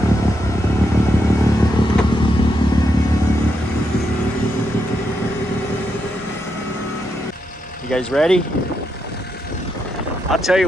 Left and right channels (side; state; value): both; normal; correlation 0.82